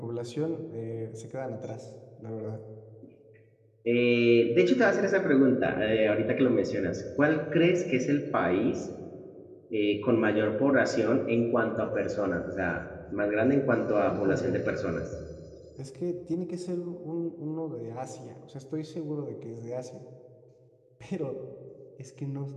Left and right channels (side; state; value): both; identical; correlation 1.00